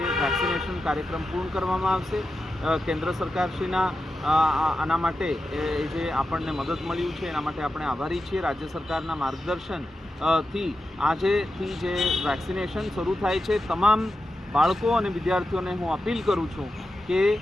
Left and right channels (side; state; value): both; normal; correlation 0.90